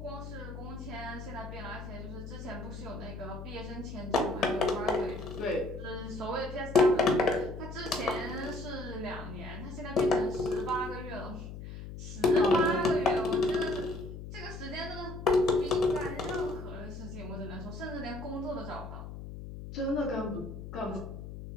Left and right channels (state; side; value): noise; left; hum, 10 dB below the sound